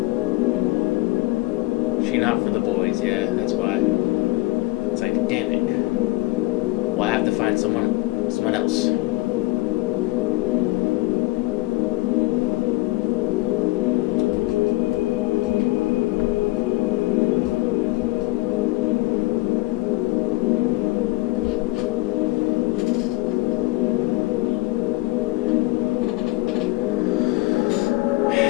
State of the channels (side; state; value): right; quieter; 20.8 dB